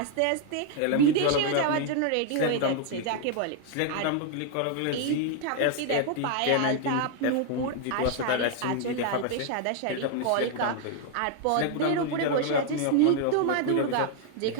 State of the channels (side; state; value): both; different; correlation 0.00